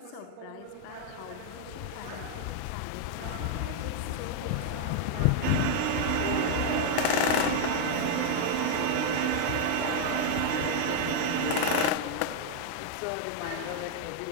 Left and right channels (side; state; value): both; different; correlation 0.00